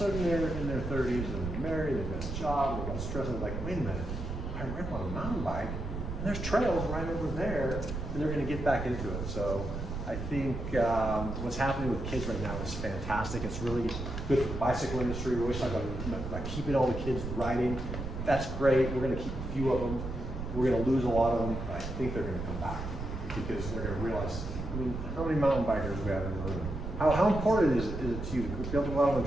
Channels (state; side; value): noise; right; rumble, 6 dB below the sound